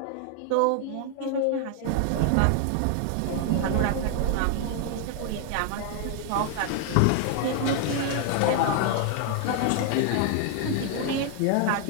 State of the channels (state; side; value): different; both; correlation 0.00